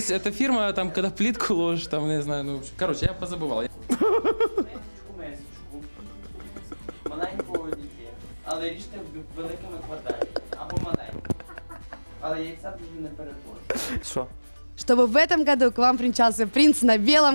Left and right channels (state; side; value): inverted; both; correlation -1.00